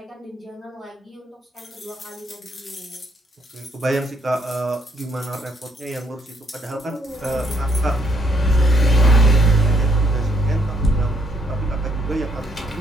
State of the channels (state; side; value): normal; both; correlation 0.71